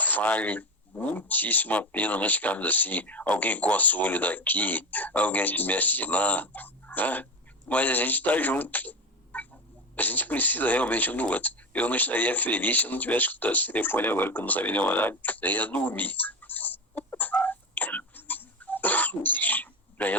vale muitíssimo a pena nós ficarmos assim, alguém coça o olho daqui, alguém se mexe de lá, né? Mas a gente está junto. A gente precisa realmente um do outro. Eu não estaria feliz se eu não tivesse escutado esse telefone agora, que eu não sabia nem o horário. Eu ia dormir. Já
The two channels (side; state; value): both; normal; correlation 0.20